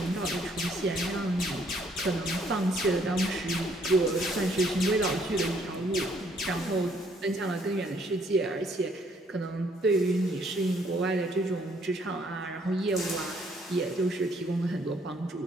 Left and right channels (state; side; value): normal; both; correlation 0.66